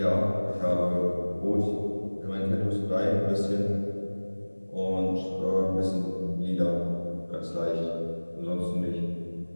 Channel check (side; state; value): both; inverted; correlation -1.00